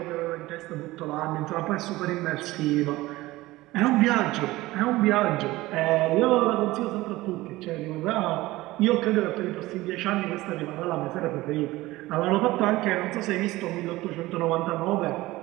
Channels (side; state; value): left; quieter; 18.6 dB